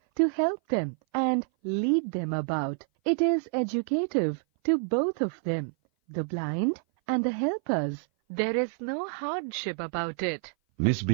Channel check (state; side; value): silent; left; 57 dB below the other